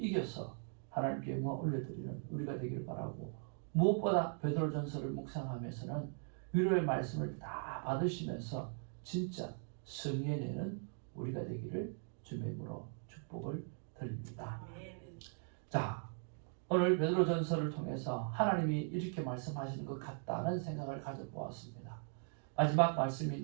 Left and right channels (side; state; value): left; silent; 51 dB below the other